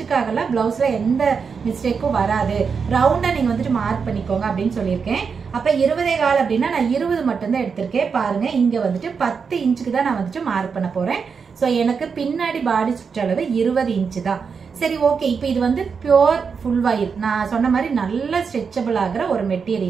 ப்ளவுஸில் எந்த மிஸ்டேக்கும் வராது. ரவுண்டாக நீங்கள் வந்துட்டு மார்க் பண்ணிக்கோங்க அப்படின்னு சொல்லியிருக்கேன். அப்போ 20.4 அப்படின்னா நான் 20 மட்டும்தான் எடுத்திருக்கேன். பாருங்கள், இங்கே வந்துட்டு 10 இன்ச்சுக்கு தான் நான் வந்துட்டு மார்க் பண்ண போகிறேன். ஸோ எனக்கு பின்னாடி பாடி சுற்றளவு 20 இன்ச்சு தான். சரி, ஓகே. இப்போ இது வந்து பியோர் ஃபுல் வாயில், நான் சொன்ன மாதிரி நல்ல ஸ்ட்ரெச்சபிள் ஆகிற ஒரு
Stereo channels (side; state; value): left; quieter; 5.8 dB